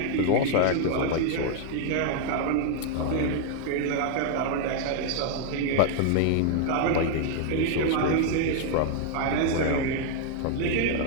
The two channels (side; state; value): both; different; correlation 0.00